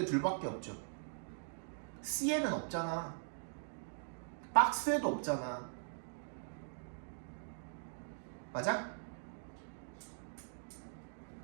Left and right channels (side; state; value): left; silent; digital silence